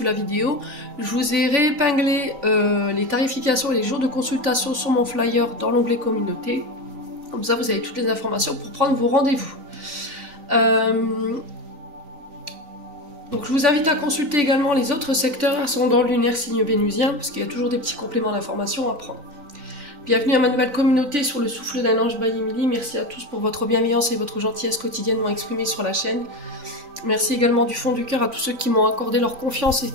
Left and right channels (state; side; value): late; left; 3.9 ms